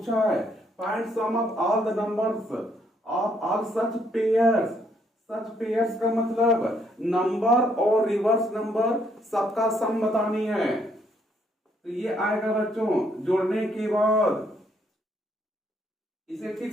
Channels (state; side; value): normal; both; correlation 0.70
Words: है find sum of all the numbers of all such pairs. Such pairs का मतलब नंबर और रिवर्स नंबर सबका सम बतानी है। तो ये आएगा बच्चों जोड़ने के बाद। इसे ठीक